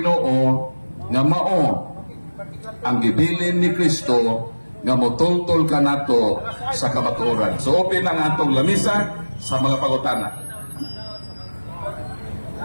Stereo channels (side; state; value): both; inverted; correlation -1.00